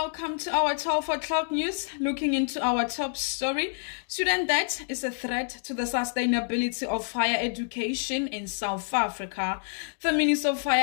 to our 12 o'clock news. Looking into our top story, student debt is a threat to the sustainability of higher education in South Africa. The Minister of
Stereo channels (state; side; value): silent; right; 58 dB below the other